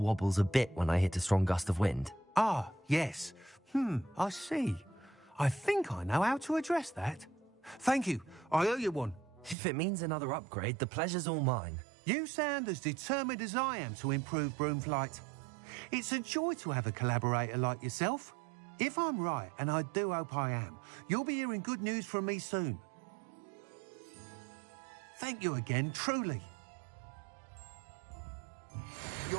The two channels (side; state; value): left; drops out; at 9.6 s